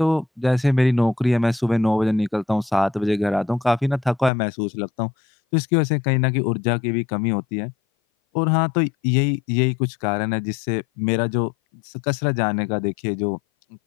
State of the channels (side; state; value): right; drops out; at 4.3 s